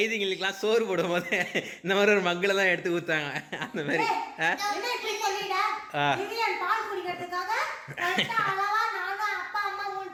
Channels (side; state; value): both; identical; correlation 1.00